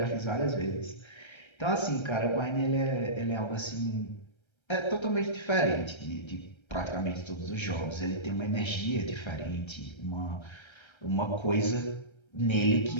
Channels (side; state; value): right; late; 1.3 ms